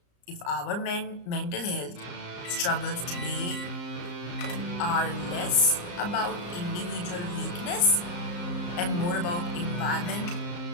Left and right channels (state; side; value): late; right; 34 ms